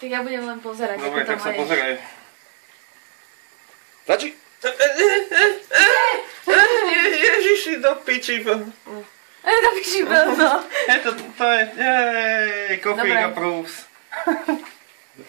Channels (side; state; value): left; silent; digital silence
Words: ja budem len pozerať, Dobre, ako to tak sa máš. pozeraj. Stačí? Ježiši, do piči. To piči no. To je, coffee Dobre. approves.